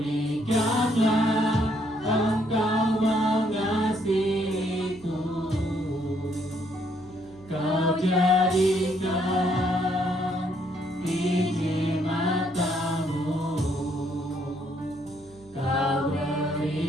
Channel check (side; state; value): right; noise; hum, 25 dB below the sound